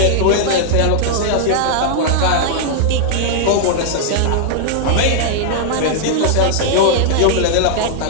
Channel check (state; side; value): different; both; correlation -0.01